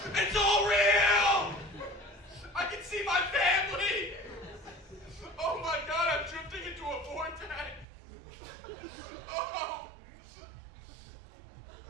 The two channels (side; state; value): left; drops out; at 7.9 s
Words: It's all real! I can see my family! Oh my God, I'm drifting into a vortex! Oh!